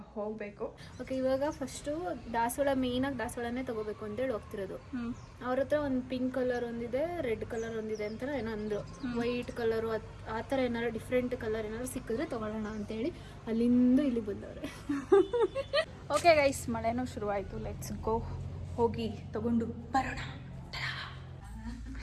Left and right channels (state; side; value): identical; both; correlation 1.00